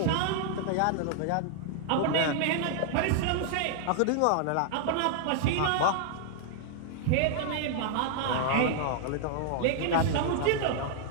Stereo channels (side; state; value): both; different; correlation 0.00